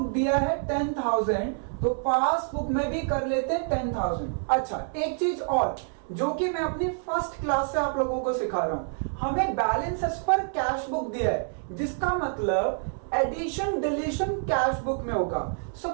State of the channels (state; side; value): silent; left; 60 dB below the other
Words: दिया है 10,000, तो पासबुक में भी कर लेते हैं 10,000। अच्छा, एक चीज और जो कि मैं अपनी फर्स्ट क्लास से आप लोगों को सिखा रहा हूं, हमें balance as per cash book दिया है, जिसका मतलब एडिशन डिलीशन कैश बुक में होगा।